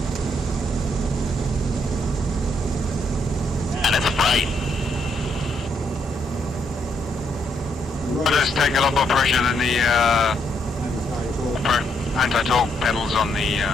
And it's bright. Does take a lot more pressure than the anti-torque pedals on the...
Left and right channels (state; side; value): normal; both; correlation 0.75